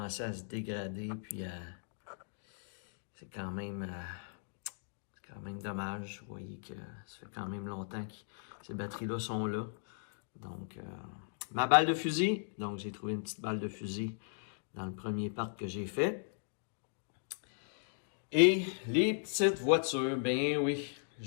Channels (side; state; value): right; silent; digital silence